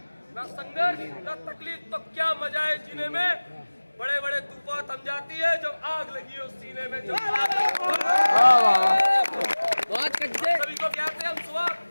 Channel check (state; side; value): inverted; both; correlation -1.00